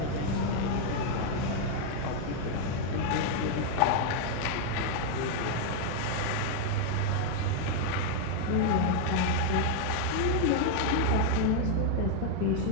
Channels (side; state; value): both; different; correlation 0.00